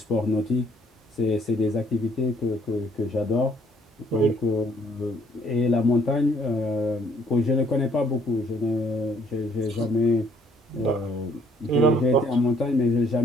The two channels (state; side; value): normal; both; correlation 0.64